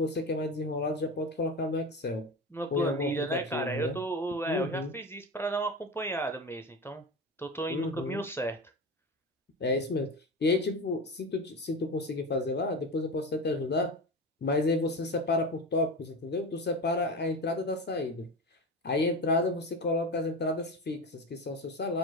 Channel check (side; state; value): both; normal; correlation 0.25